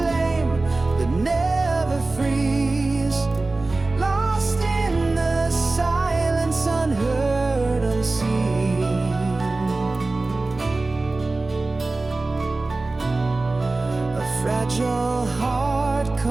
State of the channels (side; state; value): left; quieter; 3.3 dB